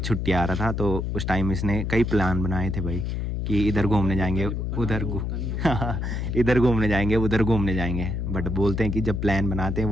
आ रहा था तो उस टाइम इसने कई प्लान बनाए थे भाई कि इधर घूमने जाएंगे उधर इधर घूमने जाएंगे उधर घूमने जाएंगे, बट बोलते हैं कि जब प्लान बनाते हैं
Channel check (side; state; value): left; noise; hum, 2 dB below the sound